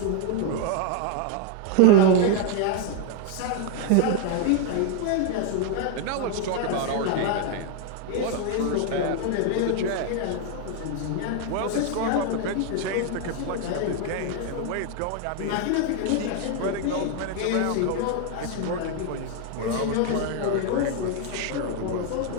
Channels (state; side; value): different; both; correlation 0.00